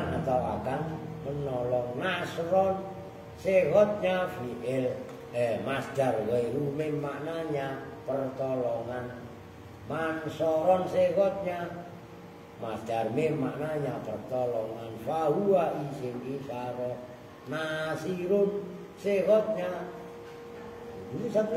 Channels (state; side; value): identical; both; correlation 1.00